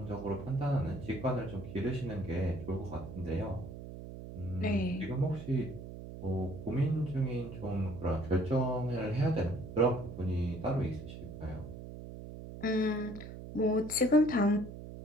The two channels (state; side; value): noise; right; hum, 11 dB below the sound